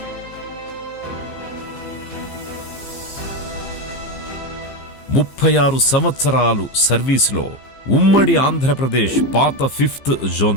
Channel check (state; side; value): late; right; 15 ms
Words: 36 సంవత్సరాలు సర్వీసులో ఉమ్మడి ఆంధ్రప్రదేశ్ పాత 5th